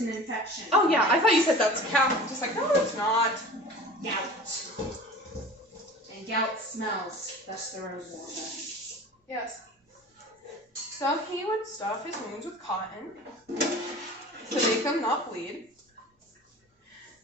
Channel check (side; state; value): both; normal; correlation 0.39